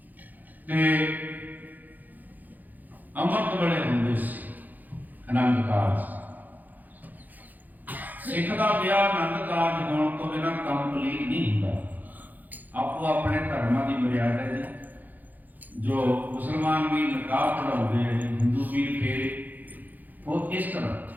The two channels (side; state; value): left; late; 0.083 ms